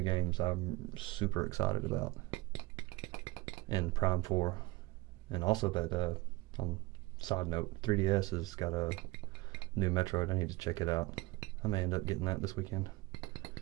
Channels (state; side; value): quieter; left; 21.7 dB